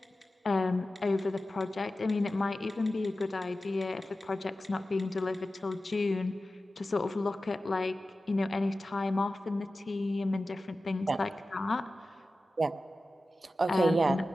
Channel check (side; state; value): both; normal; correlation 0.95